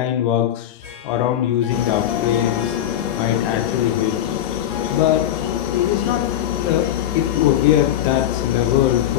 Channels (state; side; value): quieter; right; 11.6 dB